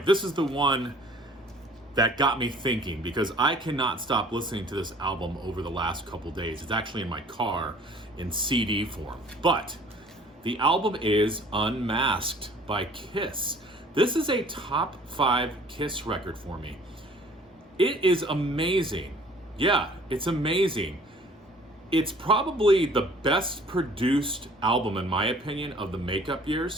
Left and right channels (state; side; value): normal; both; correlation 0.53